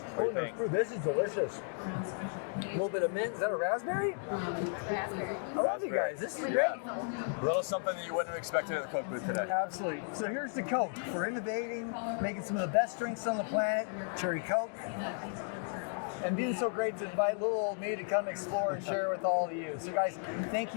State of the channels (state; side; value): silent; right; 55 dB below the other